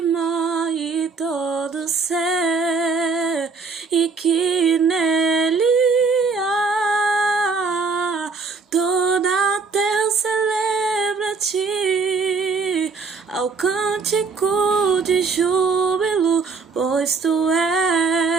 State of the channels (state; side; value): quieter; left; 4.7 dB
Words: mar e todo ser, e que nele há toda a terra celebra a Ti, ao cântico de júbilo, pois Tu